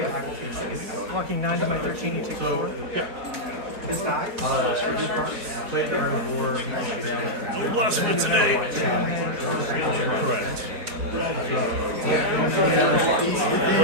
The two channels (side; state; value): left; late; 4.8 ms